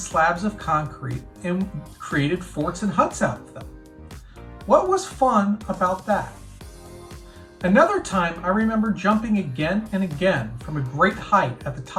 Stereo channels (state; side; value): identical; both; correlation 1.00